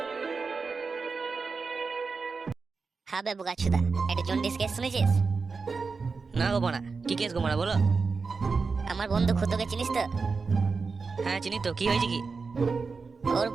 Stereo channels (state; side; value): quieter; left; 4.6 dB